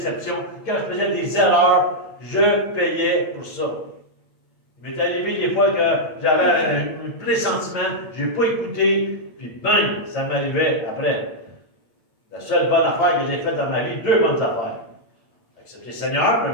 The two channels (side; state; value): right; late; 9.1 ms